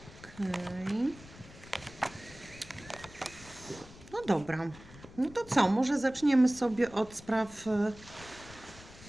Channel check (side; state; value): left; noise; rumble, 19 dB below the sound